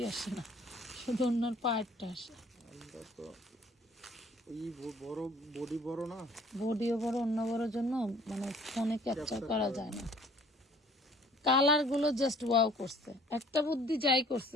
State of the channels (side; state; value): both; normal; correlation 0.54